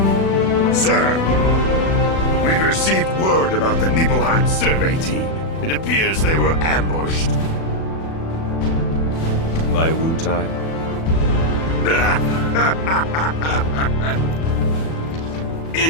Sir, we've received word about the Nibelheim survey team. It appears they were ambushed. By Wu-Tai?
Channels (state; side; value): late; right; 36 ms